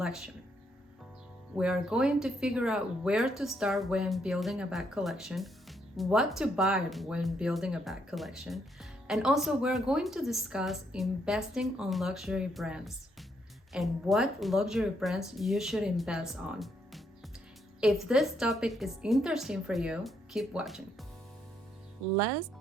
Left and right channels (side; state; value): both; normal; correlation 0.74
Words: We are going to figure out where to start when building a bag collection, what to buy when building a bag collection, and also we're going to discuss investing on luxury brands and what luxury brands you should invest on. If this topic is interesting for you, keep watching. Let's